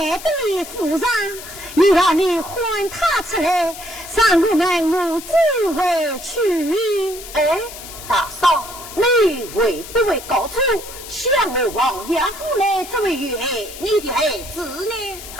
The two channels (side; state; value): left; noise; hiss, 13 dB below the sound